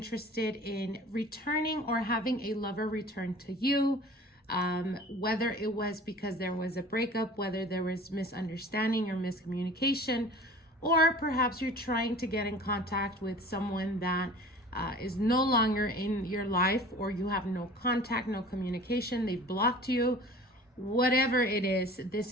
in returning or having a lover return to you, whether it was because there was a breakup, whether there was misunderstanding or miscommunication, or perhaps you're trying to get in contact with someone that is no longer in your life, or you have no contact, no communication, they've blocked you, whatever it is, this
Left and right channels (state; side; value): normal; both; correlation 0.43